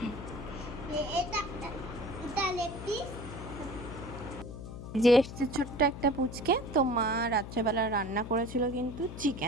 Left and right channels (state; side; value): noise; left; hum, 10 dB below the sound